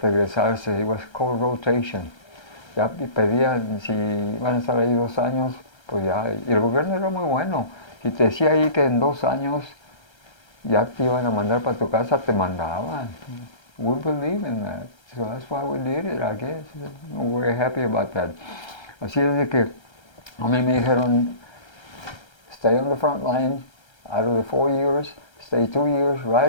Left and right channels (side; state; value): right; late; 1.3 ms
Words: It was called rotation. Ya pedían, si iban a estar ahí 2 años, pues ya. Y el gobierno era muy bueno. Si te decía ahí que en 2 años ya te iban a mandar para tu casa, te mandaban. We believe in that. So that's why we did it, I guess. We're very happy about that. Así es de que a mí me dijeron, stay on the front line. Out of the 4 years, stay 2 years